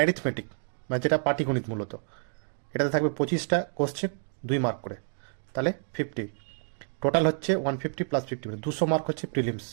মানে যেটা পাটিগণিত মূলত, এটাতে থাকবে 25টা কোশ্চেন, 2 মার্ক করে, তাহলে 50, টোটাল হচ্ছে 150 + 50 মানে 200 মার্ক হচ্ছে প্রিলিমস।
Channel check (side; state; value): left; silent; 59 dB below the other